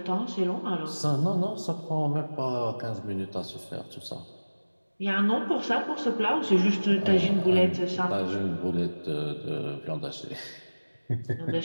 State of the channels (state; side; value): inverted; both; correlation -1.00